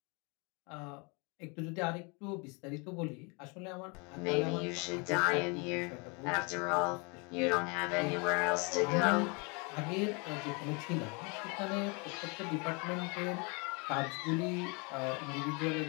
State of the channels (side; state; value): right; quieter; 31.6 dB